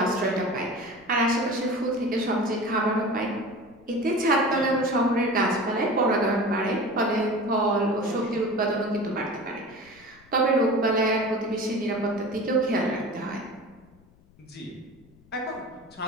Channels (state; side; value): noise; left; rumble, 28 dB below the sound